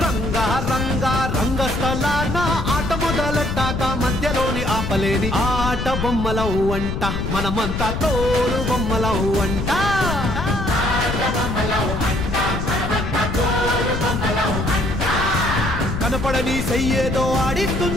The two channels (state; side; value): noise; left; rumble, 3 dB below the sound